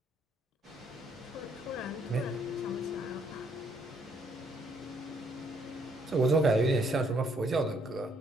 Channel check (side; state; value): both; normal; correlation 0.69